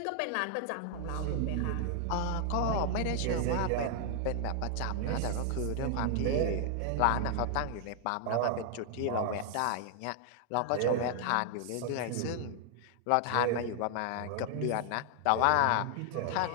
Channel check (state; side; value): different; both; correlation 0.00